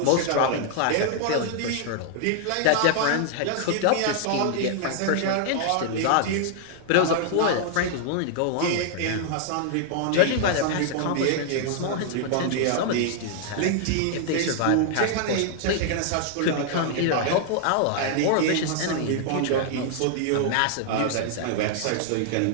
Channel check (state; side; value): different; both; correlation 0.00